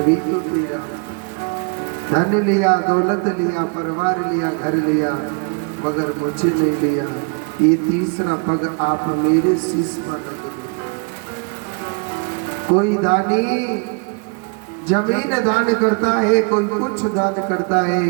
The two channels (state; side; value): quieter; left; 36.4 dB